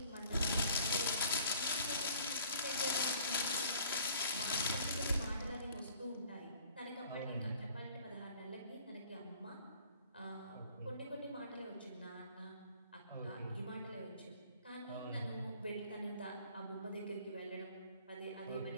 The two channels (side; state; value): both; inverted; correlation -0.55